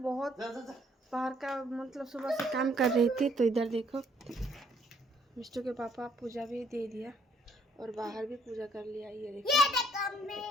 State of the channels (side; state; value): both; normal; correlation 0.66